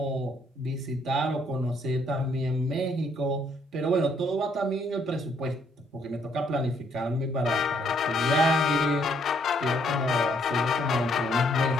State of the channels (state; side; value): normal; both; correlation 0.69